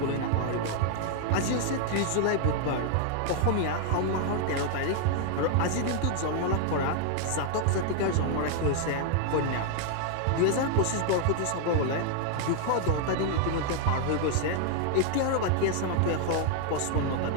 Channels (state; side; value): different; both; correlation 0.00